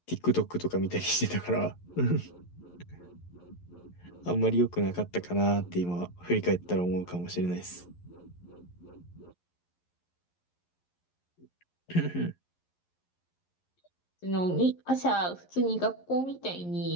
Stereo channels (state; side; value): late; right; 11 ms